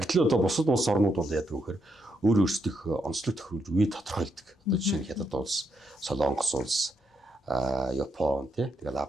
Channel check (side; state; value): both; normal; correlation 0.79